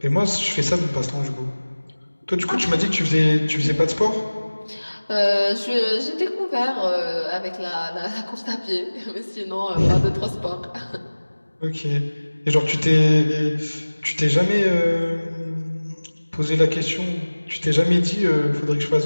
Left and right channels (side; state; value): both; inverted; correlation -1.00